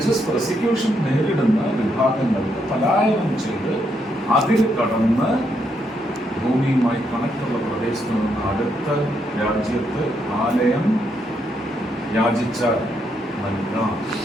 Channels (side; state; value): both; normal; correlation 0.77